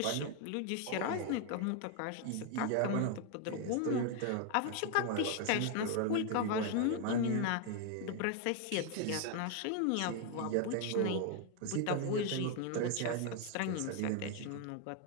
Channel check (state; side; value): different; both; correlation 0.00